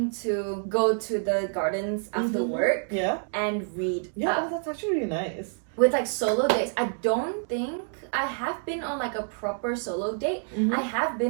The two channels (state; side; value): silent; left; 60 dB below the other